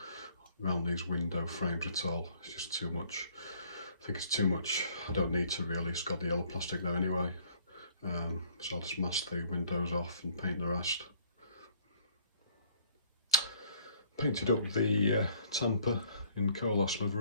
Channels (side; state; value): both; inverted; correlation -0.61